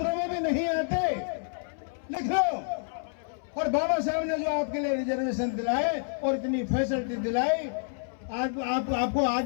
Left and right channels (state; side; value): silent; right; 59 dB below the other